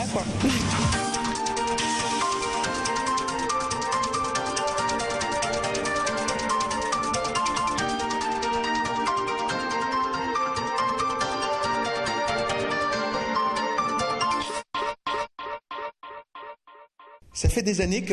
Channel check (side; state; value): both; identical; correlation 1.00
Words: quoi. Ça fait des années que